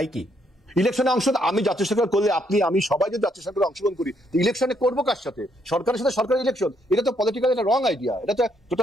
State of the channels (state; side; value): normal; both; correlation 0.73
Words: কি? ইলেকশনে অংশ আমি জাতীয় সরকার করলে আমি সবাই যদি জাতীয় সরকারে অংশগ্রহণ করি, ইলেকশনে করবো কার সাথে? সরকারের সাথে সরকারি ইলেকশন, এটা তো পলিটিক্যালি একটা রং আইডিয়া। এটা তো